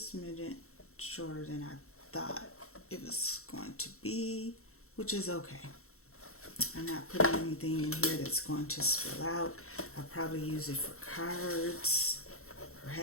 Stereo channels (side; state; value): right; late; 0.63 ms